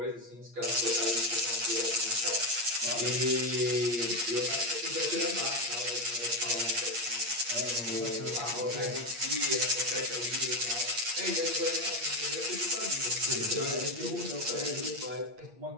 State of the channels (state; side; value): late; left; 8.5 ms